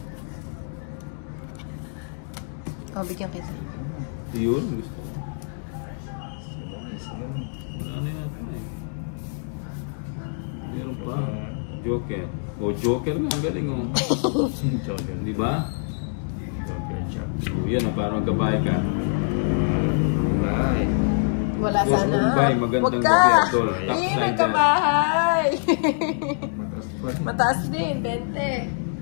Oh, bigyan kita. Yun, gusto ko. Sila. Wala na yata eh. Meron pa. Joker. O, Joker nga. Ang galing oh. Joker. Di ba? Joker chop. O, yan o. Parang gabay ka. Bye. Wala Boss sana. Mumbai, magandang Huwag gabi, ka! Idol. Top Hindi, side nagkabahay! Matas pa. Mataas din, 20.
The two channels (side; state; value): right; silent; digital silence